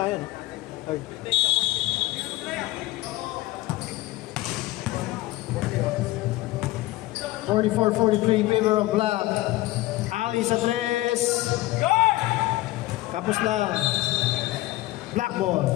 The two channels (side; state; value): right; quieter; 17.9 dB